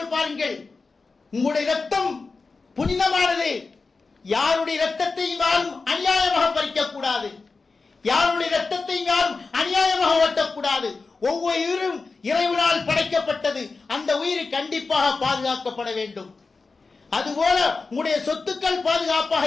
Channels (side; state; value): right; quieter; 4.1 dB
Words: பாருங்கள், உங்களுடைய இரத்தம் புனிதமானது, யாருடைய இரத்தத்தை யாரும் அநியாயமாக பறிக்க கூடாது, யாருடைய இரத்தத்தை யாரும் அநியாயமாக ஓட்டக்கூடாது. ஒவ்வொரு உயிரும் இறைவனால் படைக்கப்பட்டது, அந்த உயிர் கண்டிப்பாக பாதுகாக்கப்பட வேண்டும். அதுபோல உங்களுடைய சொத்துக்கள் பாதுகாப்பாக